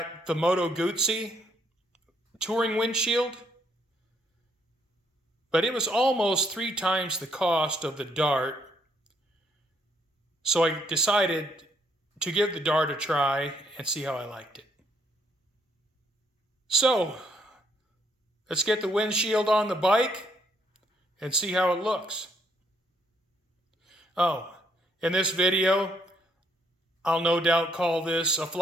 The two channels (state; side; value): normal; both; correlation 0.70